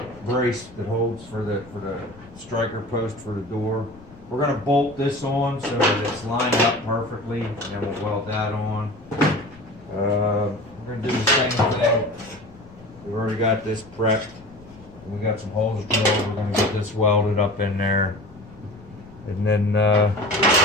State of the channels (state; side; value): noise; left; rumble, 23 dB below the sound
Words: brace that holds for the striker post for the door. We're going to bolt this on so that it's lined up perfectly, and then we'll weld that on. We're going to do the same thing. We've already got this prepped. We got some holes drilled. We're going to get this welded up in there. And then